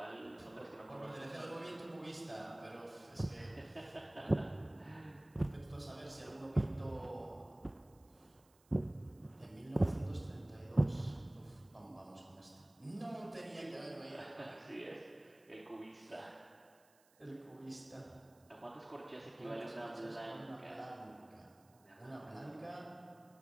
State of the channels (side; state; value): right; noise; hiss, 30 dB below the sound